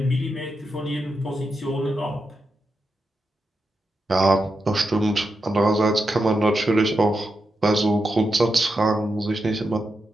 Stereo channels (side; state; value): both; normal; correlation 0.87